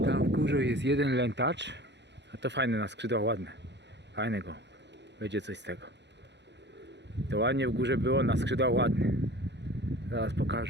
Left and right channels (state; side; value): late; left; 0.51 ms